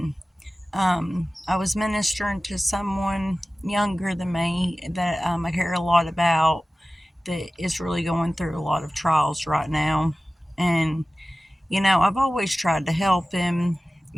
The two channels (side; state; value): both; normal; correlation 0.96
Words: and I was ministering to someone younger than me that I care a lot about that is really going through a lot of trials right now, and I've always tried to help him,